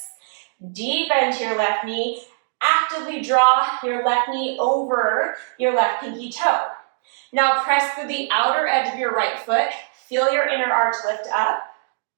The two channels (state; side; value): silent; left; digital silence